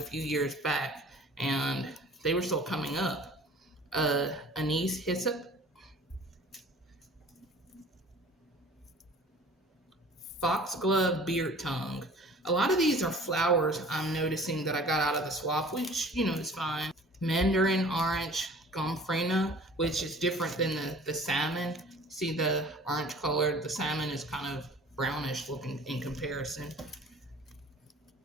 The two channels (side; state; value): both; normal; correlation 0.47